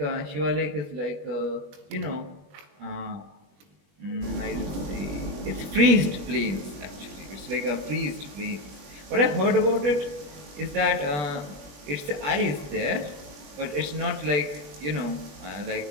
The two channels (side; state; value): left; late; 21 ms